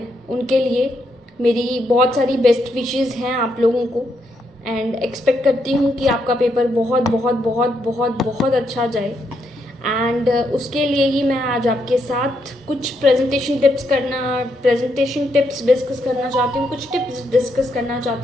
उनके लिए मेरी बहुत सारी बेस्ट विशेस हैं आप लोगों को एंड एक्सपेक्ट करती हूँ कि आपका पेपर बहुत बहुत बहुत बहुत बहुत अच्छा जाए। एंड उसके लिए ही मैं आज आपके साथ कुछ प्रेजेंटेशन टिप्स डिस्कस करना चाहती हूँ, कुछ टिप्स डिस्कस करना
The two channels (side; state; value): both; normal; correlation 0.78